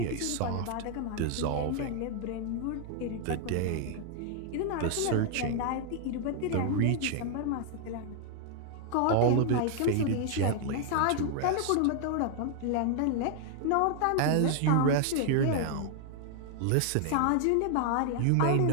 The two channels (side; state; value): both; different; correlation 0.00